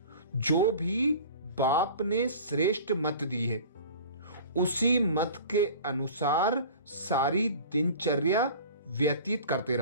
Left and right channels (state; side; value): inverted; both; correlation -0.41